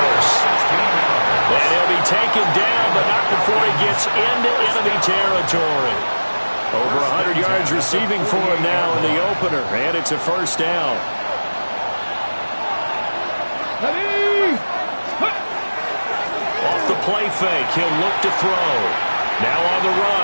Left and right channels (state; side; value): inverted; both; correlation -1.00